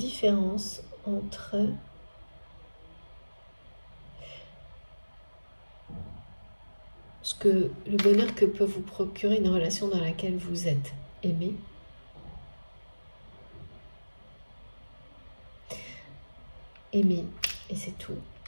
entre le bonheur que peut vous procurer une relation dans laquelle vous êtes aimé, et c'est tout,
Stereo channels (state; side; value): inverted; both; correlation -1.00